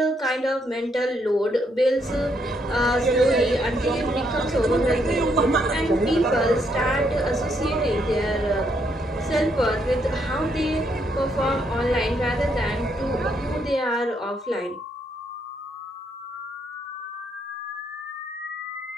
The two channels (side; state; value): both; normal; correlation 0.74